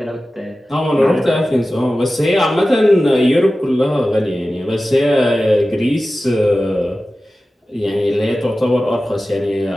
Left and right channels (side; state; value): both; normal; correlation 0.95